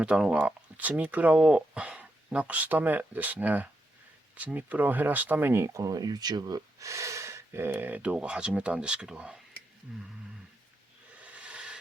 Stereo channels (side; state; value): both; normal; correlation 0.83